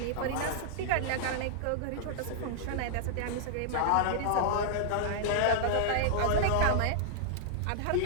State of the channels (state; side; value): different; both; correlation -0.01